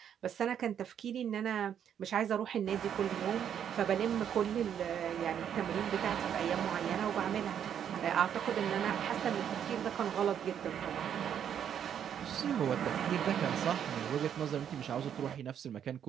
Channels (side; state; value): left; quieter; 9.0 dB